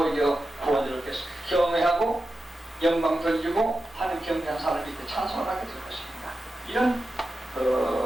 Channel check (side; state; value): both; normal; correlation 0.91